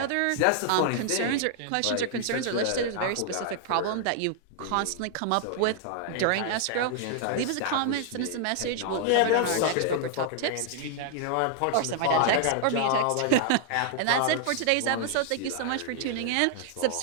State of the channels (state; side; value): different; both; correlation 0.00